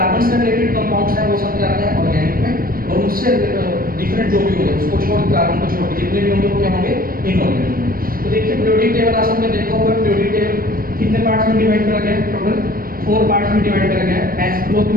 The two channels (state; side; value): late; left; 0.42 ms